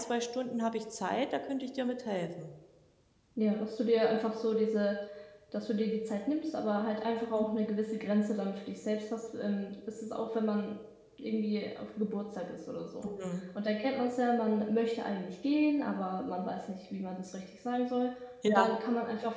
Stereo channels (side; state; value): both; identical; correlation 1.00